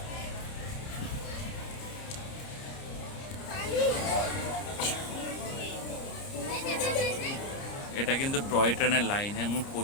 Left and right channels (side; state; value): right; late; 30 ms